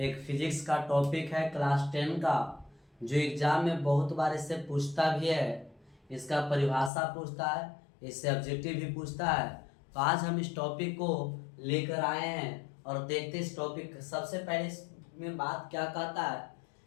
फिजिक्स का टॉपिक है क्लास 10 का, जो एग्जाम में बहुत बार इससे पूछता भी है। इसका परिभाषा पूछता है, इससे ऑब्जेक्टिव भी पूछता है। तो आज हम इस टॉपिक को लेकर आए हैं और देखते हैं इस टॉपिक। सबसे पहले इसमें बात क्या कहता है,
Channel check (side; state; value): right; drops out; at 6.9 s